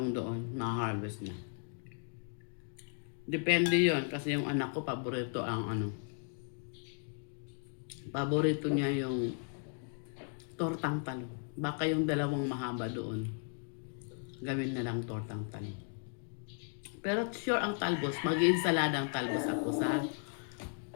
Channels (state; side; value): silent; right; 54 dB below the other